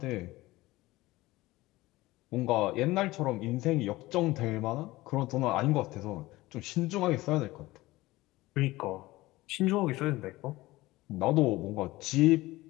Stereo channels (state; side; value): quieter; right; 18.9 dB